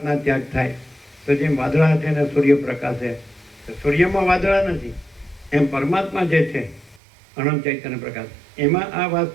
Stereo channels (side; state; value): left; drops out; at 7.0 s